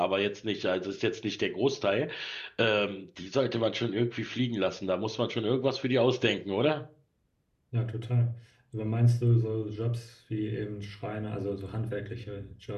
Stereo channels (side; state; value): both; identical; correlation 1.00